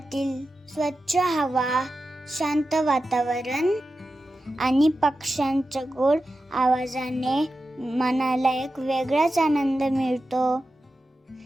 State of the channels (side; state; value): both; normal; correlation 0.92